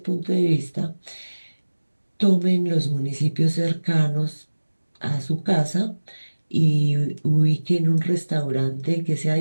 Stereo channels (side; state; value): both; inverted; correlation -1.00